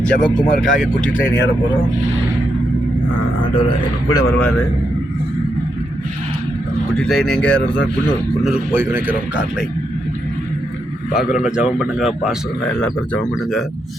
ஜெபக்குமாருக்காக குட்டி ட்ரெயின் ஏற போகிறோம். ஆண்டவர் எங்கள் கூட வருவார். குட்டி ட்ரெயின் எங்கே ஏறுறதா? குன்னூருக்கு போய் நினைக்கிறோம். கார்லை பார்க்குறவங்க ஜெபம் பண்ணுங்கள். பாஸ்டருங்க எல்லா பேரும் ஜெபம் பண்ணுங்கள்.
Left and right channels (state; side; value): normal; both; correlation 0.82